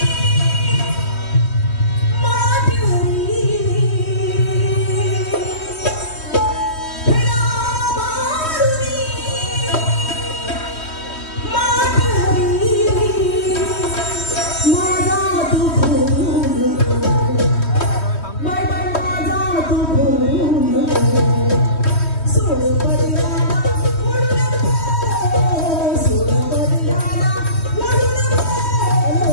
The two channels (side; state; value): right; late; 3.2 ms